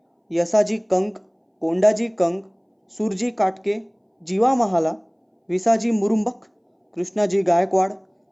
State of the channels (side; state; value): both; identical; correlation 1.00